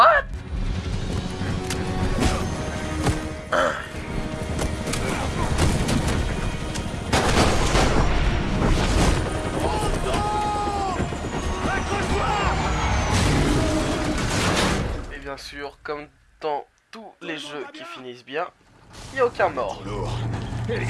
Et bien sûr, comme dans tous les jeux qui finissent bien, il n'y a aucun mort. Lourd.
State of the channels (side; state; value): both; identical; correlation 1.00